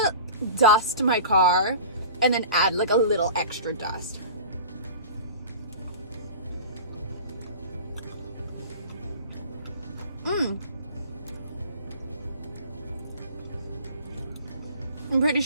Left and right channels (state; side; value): inverted; both; correlation -0.38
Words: dust my car and then add like a little extra dust. I'm pretty